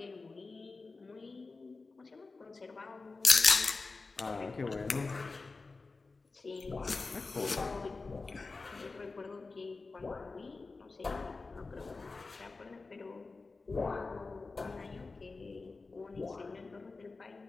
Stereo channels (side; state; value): right; quieter; 3.9 dB